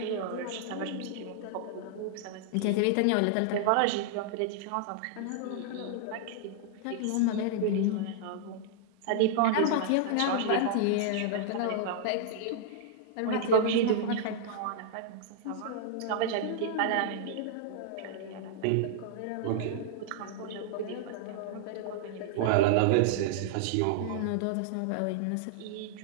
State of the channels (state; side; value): different; both; correlation -0.01